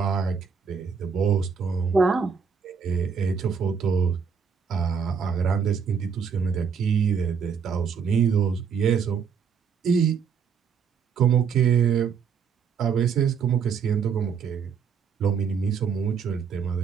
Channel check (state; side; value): quieter; left; 6.4 dB